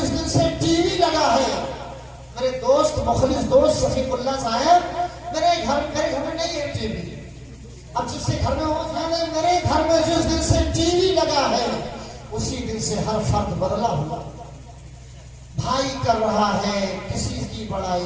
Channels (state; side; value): identical; both; correlation 1.00